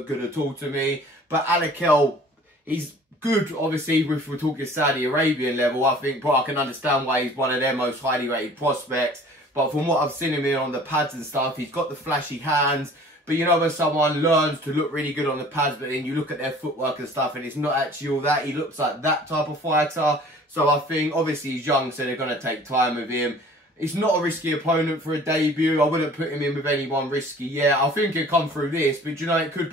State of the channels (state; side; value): normal; both; correlation 0.49